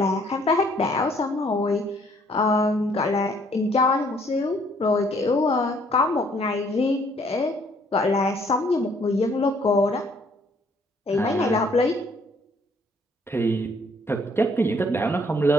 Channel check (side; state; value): both; normal; correlation 0.63